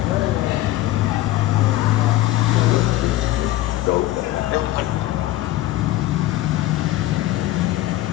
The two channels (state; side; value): quieter; right; 15.7 dB